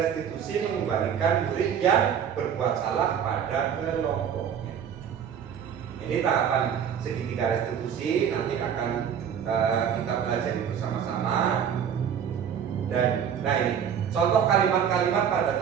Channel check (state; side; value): quieter; left; 8.2 dB